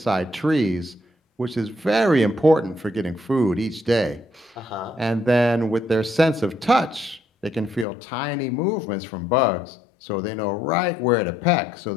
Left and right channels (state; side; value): drops out; right; at 7.9 s